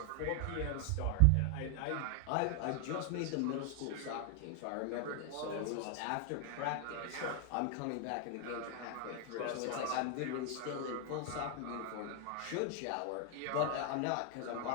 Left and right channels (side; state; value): both; different; correlation 0.00